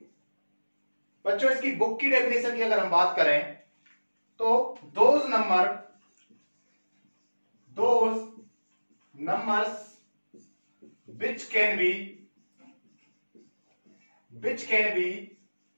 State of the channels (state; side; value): inverted; both; correlation -1.00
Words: बच्चों, इसकी बुक की डेफिनेशन की अगर हम बात करें तो those numbers which can be